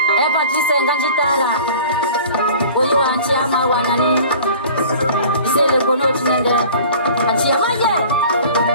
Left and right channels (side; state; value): both; inverted; correlation -0.44